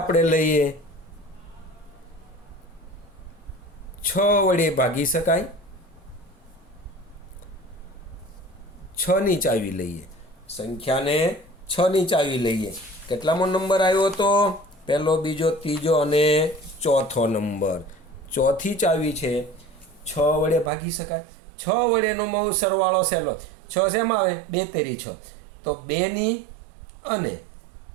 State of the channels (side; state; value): left; drops out; at 20.7 s